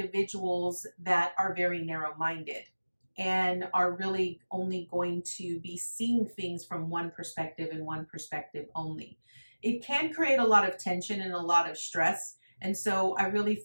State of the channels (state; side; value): inverted; both; correlation -1.00